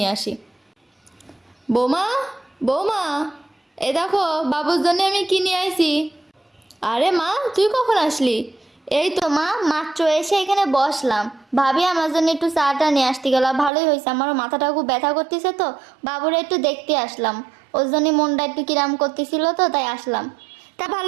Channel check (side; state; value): left; drops out; at 13.7 s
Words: আসি। বৌমা, বৌমা, এ দেখো বাবুর জন্য আমি কি নিয়ে আইছি। আরে মা, তুই কখন আসলি? এই তো মা, মাত্র এসে এখানে বসলাম। ভাবি আমার জন্য একটু চাটা নিয়ে আসতে গেল, ভালোই হয়েছে। আমারও মাথাটা খুব ব্যথা করতেছে, তো বাবুরা একটু দেখতে আসলাম। ওর জন্য মনটা একটু কিরাম করতেছিল, তো তাই আসলাম। তা